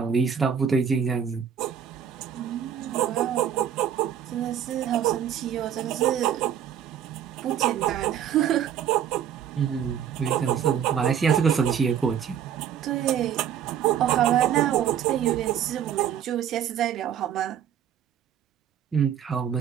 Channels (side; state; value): left; quieter; 9.1 dB